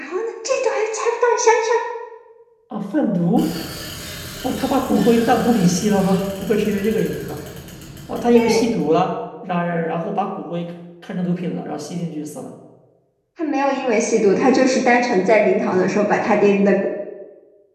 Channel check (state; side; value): identical; both; correlation 1.00